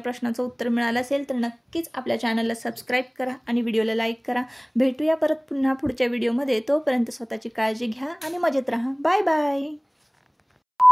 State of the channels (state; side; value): identical; both; correlation 1.00